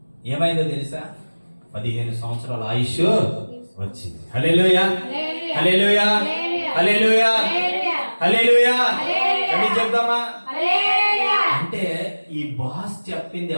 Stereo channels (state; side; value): inverted; both; correlation -1.00